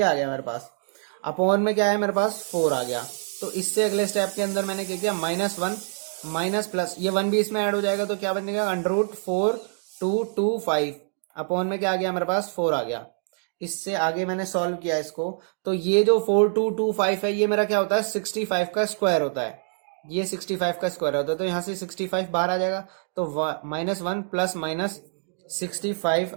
आ गया मेरे पास, अपॉन में क्या है मेरे पास 4 आ गया। तो इससे अगले स्टेप के अंदर मैंने क्या किया -1 माइनस प्लस ये 1 भी इसमें ऐड हो जाएगा, तो क्या बनेगा अंडर रूट 4 2 2 5 अपॉन में क्या आ गया मेरे पास 4 आ गया। इससे आगे मैंने सॉल्व किया इसको, तो ये जो 4225 है ये मेरा क्या होता है 65 का स्क्वायर होता है, ये 65 का स्क्वायर होता है, तो यहाँ से 65 बाहर आ जाएगा, तो -1 प्लस माइनस 65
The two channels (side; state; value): left; silent; digital silence